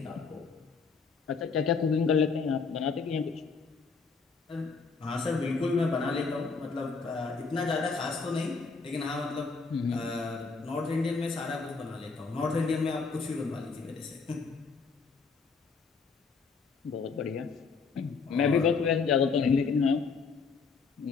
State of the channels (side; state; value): right; quieter; 4.9 dB